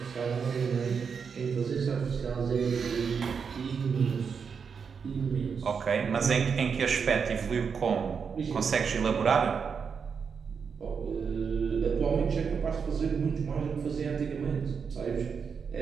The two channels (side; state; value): left; quieter; 6.2 dB